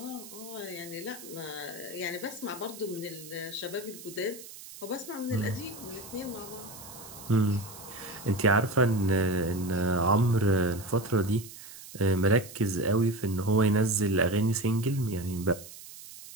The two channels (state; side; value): noise; right; hiss, 15 dB below the sound